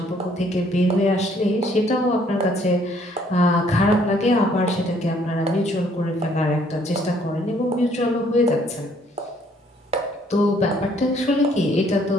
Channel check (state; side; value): normal; both; correlation 0.64